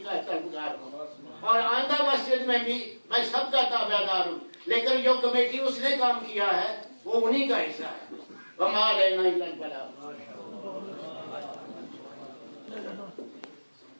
کا طلبگار ہوں، اور آئندہ مسجد میں بھی میں سب کا تابع دار ہوں. لیکن جو کمیٹی اس نے کام کیا ہے وہ انہی کا حصہ ہے. وما علینا الا البلاغ.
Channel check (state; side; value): inverted; both; correlation -1.00